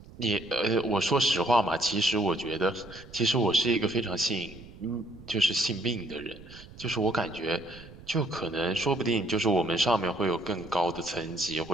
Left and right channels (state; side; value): noise; right; rumble, 18 dB below the sound